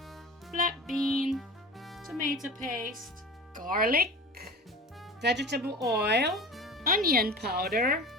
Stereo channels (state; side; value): normal; both; correlation 0.36